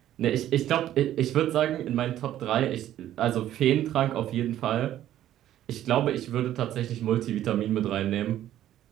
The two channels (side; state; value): left; quieter; 12.4 dB